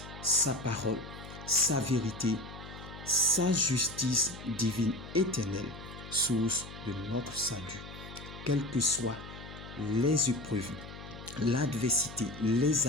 sa parole, sa vérité, sa justice divine éternelle, source de notre salut. Quelles que soient les épreuves, l'adversité, les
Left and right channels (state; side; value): noise; left; hum, 13 dB below the sound